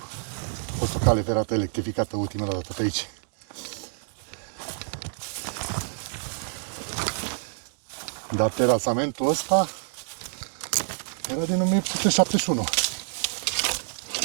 A fost o cale ferată electrificată ultima dată pe aici. Dar terasamentul ăsta era din 1871.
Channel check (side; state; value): left; silent; digital silence